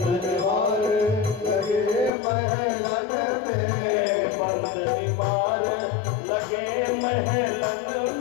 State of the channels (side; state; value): right; drops out; at 2.1 s